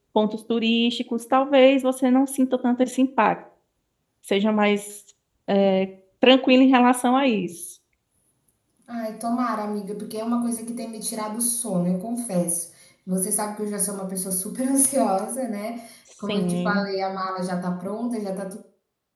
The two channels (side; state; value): both; identical; correlation 1.00